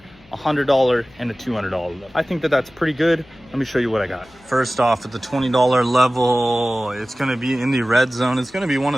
$100, and a $200 level. I think that that's pretty good. Let me show you what I got. First off, at the $20 level, it's gonna be in the red zone. It's gonna be one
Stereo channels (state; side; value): noise; left; hum, 27 dB below the sound